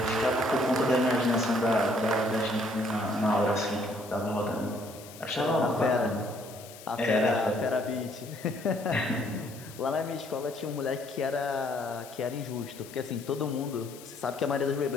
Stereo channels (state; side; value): noise; left; hiss, 18 dB below the sound